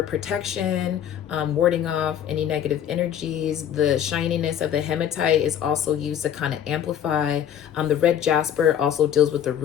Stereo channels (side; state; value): right; quieter; 9.6 dB